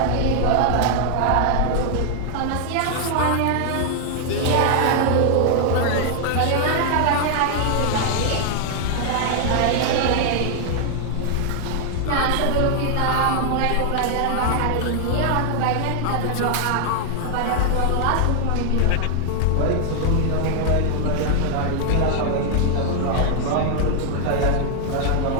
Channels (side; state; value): both; different; correlation 0.00